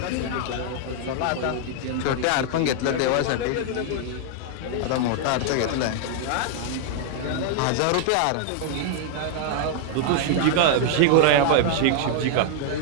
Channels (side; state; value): both; different; correlation -0.01